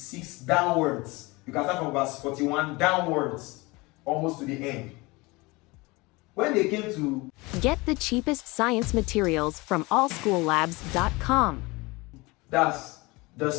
downwards. You can start from verse 41 downwards, almost to the end. When they came to get the cheapest science materials from allschoollabs.com. That's the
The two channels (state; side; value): quieter; right; 23.9 dB